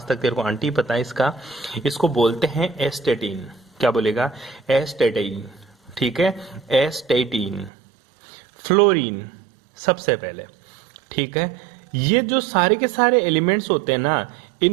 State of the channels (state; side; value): drops out; left; at 7.7 s